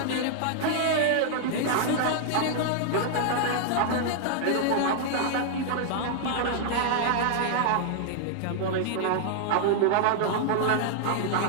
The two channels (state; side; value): different; both; correlation -0.01